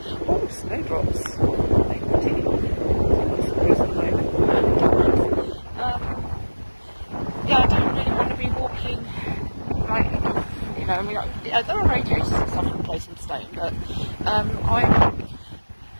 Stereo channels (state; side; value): inverted; both; correlation -1.00